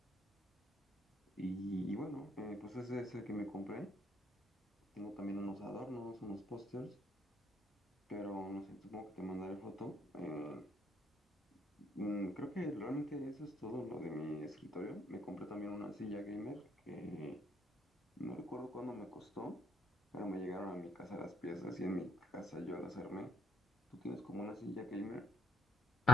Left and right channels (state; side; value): normal; both; correlation 0.70